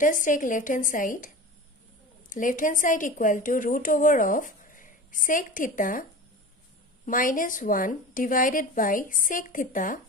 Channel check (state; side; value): normal; both; correlation 0.32